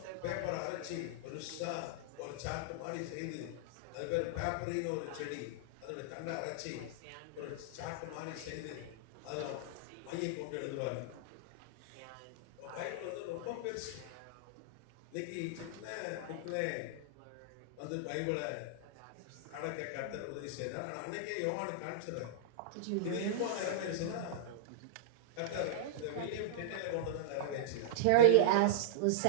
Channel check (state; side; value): different; both; correlation -0.02